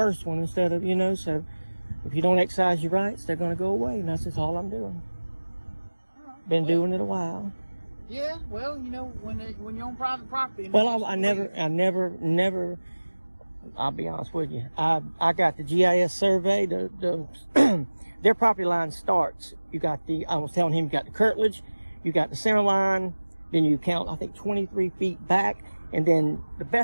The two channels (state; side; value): inverted; both; correlation -1.00